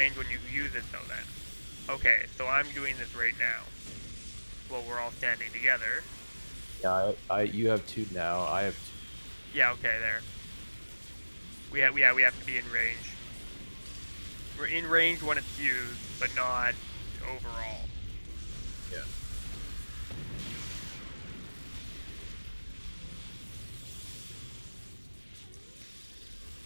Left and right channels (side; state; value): both; inverted; correlation -1.00